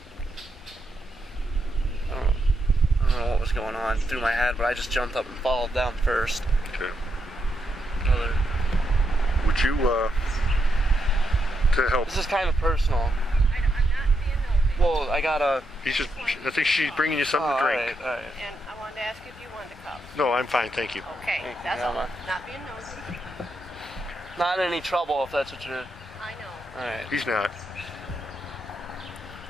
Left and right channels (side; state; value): both; normal; correlation 0.82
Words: I don't know what was going on through my head, but I just jumped up and followed them first. Okay. Would you, to help? This is kind of personal. I'm not being nosy. Well, I got a... I think she's bringing you something to drink. All right. And I wanted to ask if you wanted a cup. No, I'm fine, thank you. Okay, Thank you, that's all. Mama. Not being nosy. Not in any trouble if that's what you're... I know. All right. He's not.